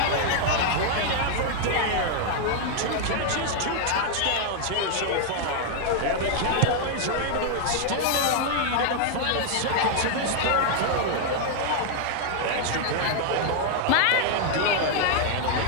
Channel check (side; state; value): both; different; correlation 0.00